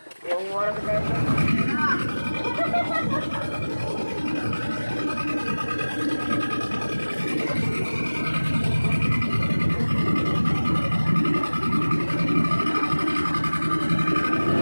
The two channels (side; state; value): both; inverted; correlation -1.00